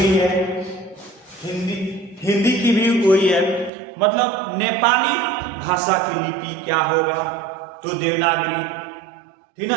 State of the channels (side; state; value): left; drops out; at 3.7 s